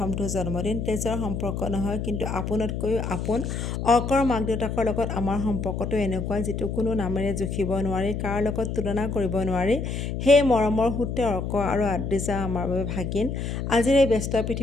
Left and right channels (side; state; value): left; noise; hum, 3 dB below the sound